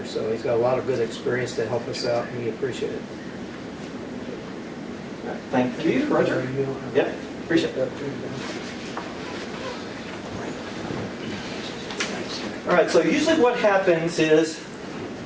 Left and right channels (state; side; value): identical; both; correlation 1.00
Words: So he's got a lot of good experience to help us out, and we appreciate it. Thank you, Roger. Yep, appreciate it. All right, so usually what happens is